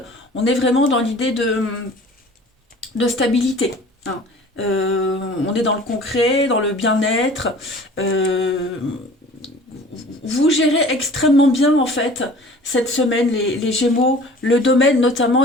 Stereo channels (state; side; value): normal; both; correlation 0.46